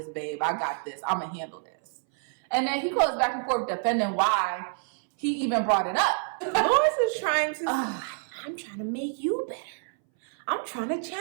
babe. I got this. I'm going to handle this. And then he goes back and forth defending why he even brought it up. Lewis is trying to... I'm trying to make you better. I'm trying to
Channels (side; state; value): left; silent; 60 dB below the other